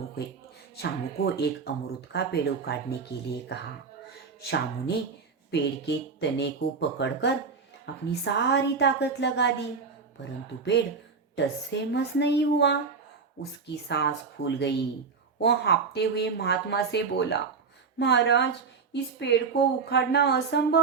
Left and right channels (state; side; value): quieter; left; 5.1 dB